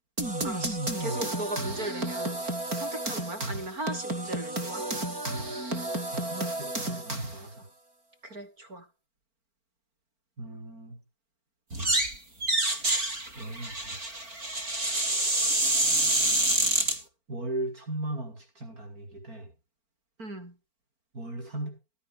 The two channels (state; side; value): late; left; 4.4 ms